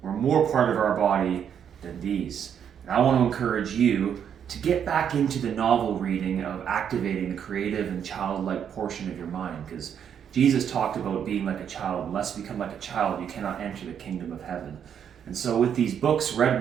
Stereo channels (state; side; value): quieter; left; 8.4 dB